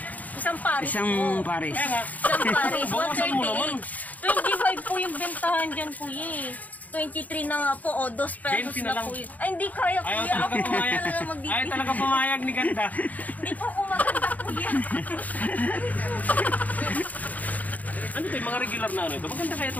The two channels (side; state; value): right; late; 0.077 ms